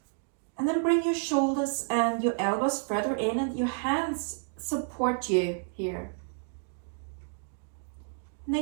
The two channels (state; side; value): silent; left; 58 dB below the other